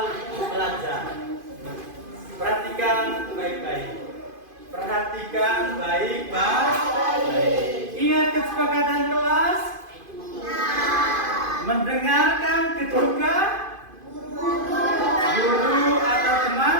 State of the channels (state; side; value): late; left; 2.5 ms